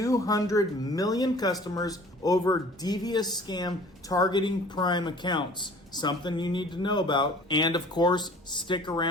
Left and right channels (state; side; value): normal; both; correlation 0.49